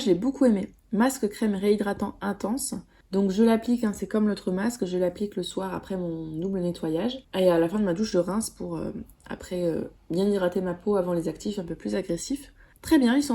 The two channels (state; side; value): identical; both; correlation 1.00